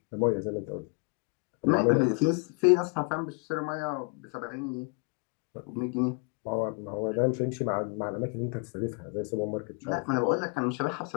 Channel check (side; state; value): right; quieter; 35.0 dB